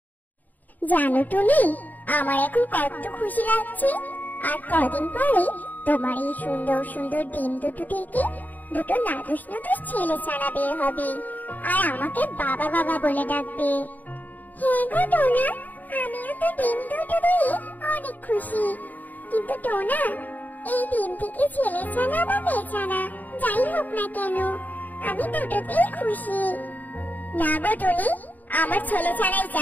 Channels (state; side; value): late; right; 0.083 ms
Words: জানো টুনি, আমার এখন কত খুশি লাগছে। আর কদিন পরে তোমার এই সুন্দর সুন্দর ডিম দুটো থেকে দুটো নাদুস নাদুস ছেলে ছানা বের হবে, আর আমাকে বাবা বাবা বলে ডাকবে। হ্যাঁ গো টোনা, আমিও তো ডিম দুটো দিয়ে অনেক খুশি। কিন্তু টোনা, এই ডিম থেকে ছেলে ছানা বা মেয়ে ছানা যাই হোক না কেন, আমি দুটোতেই খুশি। না গো টুনি, আমার ছেলে ছানাই